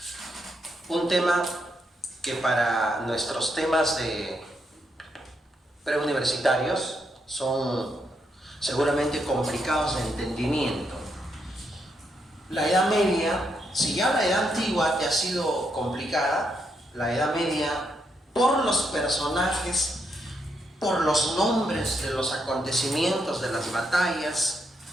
un tema que para nuestros temas de preuniversitarios son seguramente complicados de entendimiento. La Edad Media, si ya la Edad Antigua te ha sido complicada, la Edad Media, por los personajes, por los nombres de los acontecimientos, de las batallas,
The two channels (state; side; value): normal; both; correlation 0.79